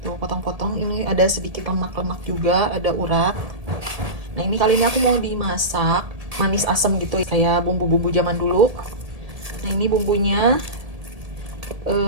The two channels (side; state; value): left; late; 1.8 ms